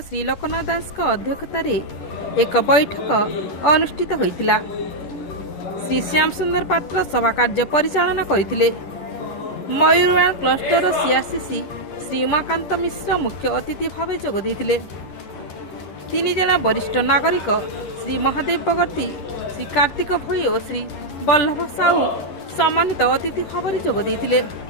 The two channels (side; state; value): right; late; 11 ms